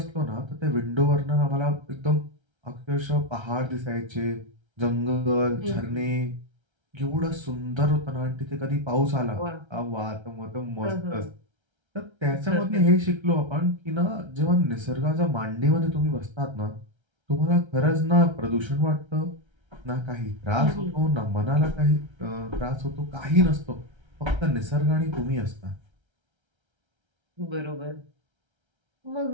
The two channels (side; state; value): left; late; 1.3 ms